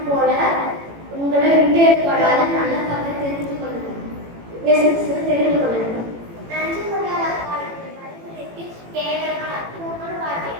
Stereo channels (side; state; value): left; late; 18 ms